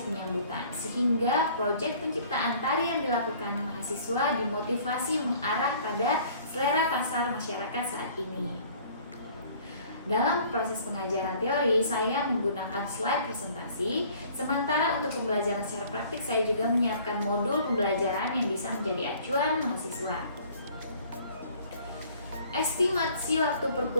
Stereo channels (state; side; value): inverted; both; correlation -0.53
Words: penyambutan, sehingga proyek penciptaan tari yang dilakukan mahasiswa dimotivasi mengarah pada selera pasar masyarakat saat ini. Dalam proses pengajaran teori, saya menggunakan slide presentasi, sementara untuk pembelajaran secara praktik saya juga menyiapkan modul pembelajaran yang bisa menjadi acuan mahasiswa. Estimasi waktu